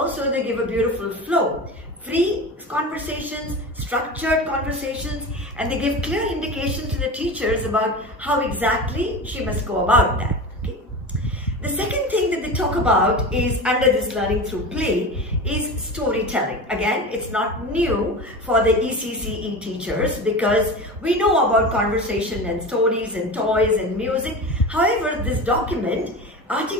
they give a beautiful flow. Free conversations, structured conversations, and they give clear indications to the teachers about how exactly she must go about that. Okay? The second thing that they talk about is, under this learning through play, is storytelling. Again, it's not new for the ECCE teachers because we know about conversation and stories and toys and music. However, this document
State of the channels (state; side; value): normal; both; correlation 0.29